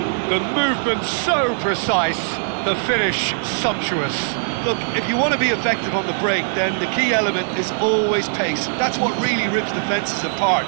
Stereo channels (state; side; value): silent; left; digital silence